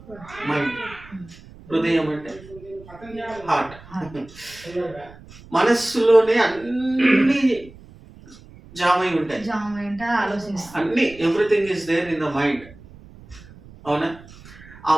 హృదయం అంటే హార్ట్. మనస్సులోనే అన్ని జామై ఉంటాయి, అన్ని everything is there in the mind. అవునా? ఆ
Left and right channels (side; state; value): right; noise; rumble, 21 dB below the sound